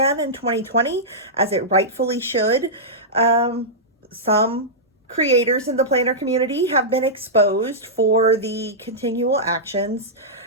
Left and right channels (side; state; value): both; normal; correlation -0.13